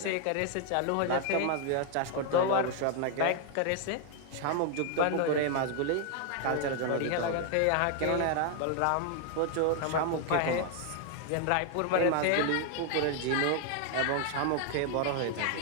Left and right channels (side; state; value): both; different; correlation 0.00